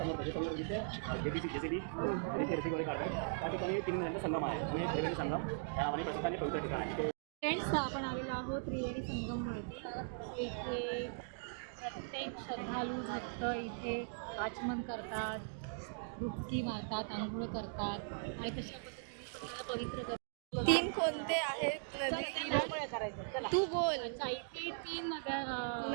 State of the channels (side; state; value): left; silent; digital silence